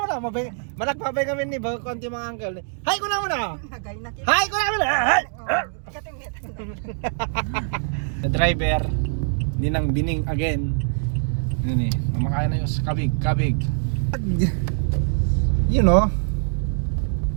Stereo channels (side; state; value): left; silent; digital silence